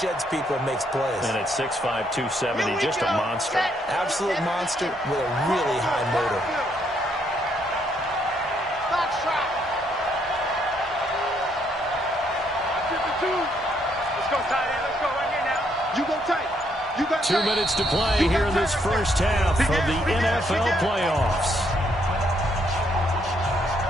people and makes plays. And at 6'5", 270, just a monster. Absolute monster with a really high motor. Box trap. 52. Let's go, tight end. Let's go. 2 minutes to play here in this first half of the NFL playoffs.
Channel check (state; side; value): normal; both; correlation 0.72